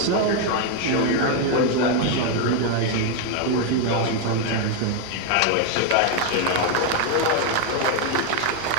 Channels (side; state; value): both; different; correlation 0.01